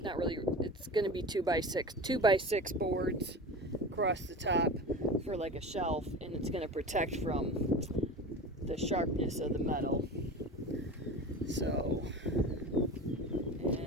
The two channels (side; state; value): both; normal; correlation 0.32